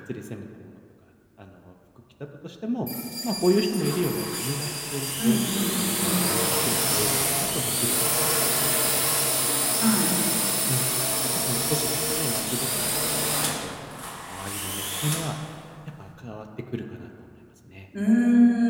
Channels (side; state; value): both; identical; correlation 1.00